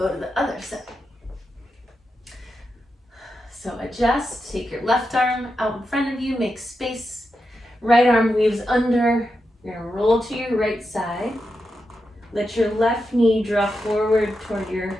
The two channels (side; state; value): both; normal; correlation 0.88